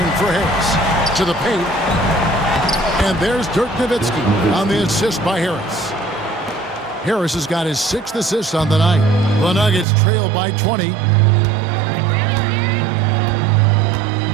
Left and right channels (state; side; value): drops out; left; at 9.9 s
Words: for Harris. To the paint. And there's Dirk Nowitzki on the assist by Harris. Harris has got his 6th assist on the night. The Nuggets trail by 20.